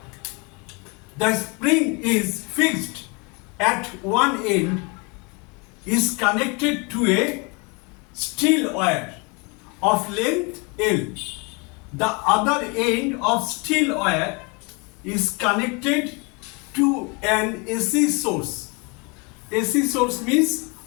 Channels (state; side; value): quieter; right; 30.0 dB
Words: The spring is fixed at one end, is connected to a steel wire of length L. The other end of steel wire is connected to an AC source. AC source means